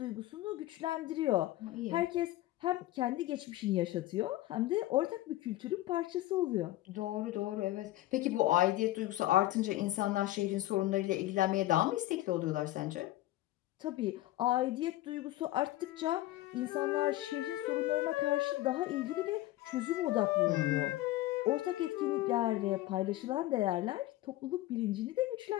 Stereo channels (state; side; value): quieter; right; 16.2 dB